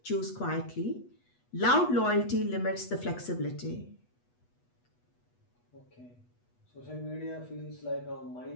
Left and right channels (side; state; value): right; late; 8.2 ms